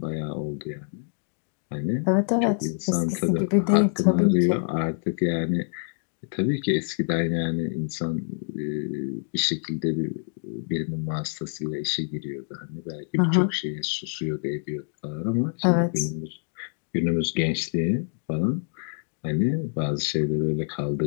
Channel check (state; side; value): silent; right; digital silence